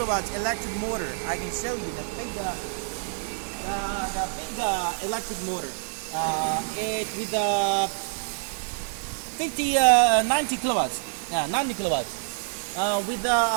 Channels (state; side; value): silent; left; digital silence